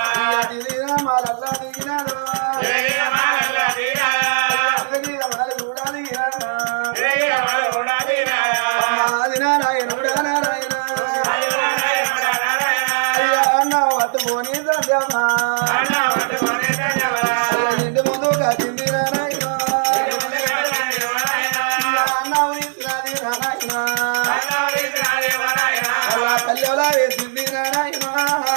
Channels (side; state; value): left; silent; digital silence